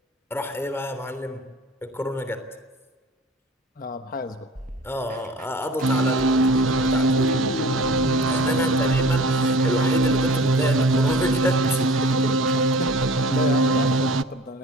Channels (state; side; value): normal; both; correlation 0.44